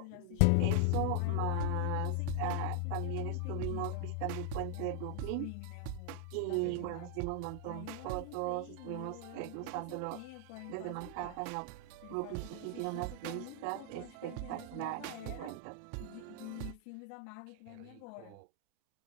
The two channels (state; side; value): different; both; correlation 0.00